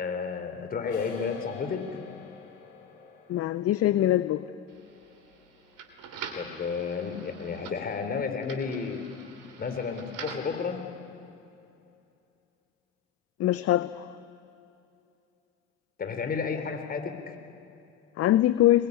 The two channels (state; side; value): quieter; right; 9.4 dB